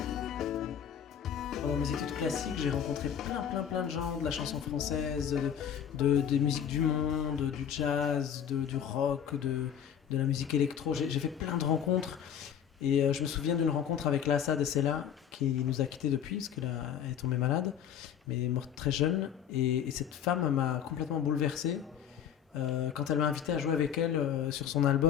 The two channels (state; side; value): quieter; right; 8.9 dB